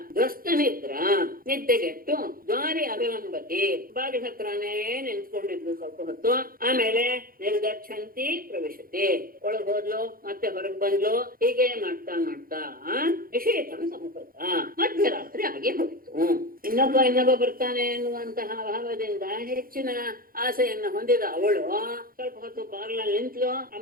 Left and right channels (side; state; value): left; late; 0.42 ms